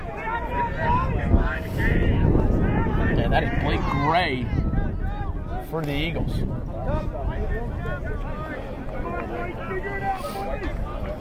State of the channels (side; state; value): both; identical; correlation 1.00